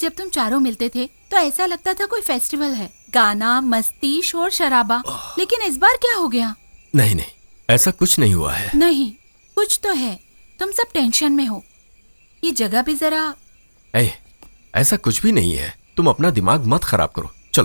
तुम चारों मिलते थे तो ऐसा लगता था कोई फेस्टिवल है, गाना, मस्ती, शोर शराबा। लेकिन इस बार क्या हो गया? नहीं नहीं, ऐसा कुछ नहीं हुआ है। नहीं, कुछ तो है। तुम सब टेंशन में हो। ये जगह भी जरा। ऐसा कुछ भी नहीं है, तुम अपना दिमाग मत खराब करो।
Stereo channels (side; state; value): both; inverted; correlation -1.00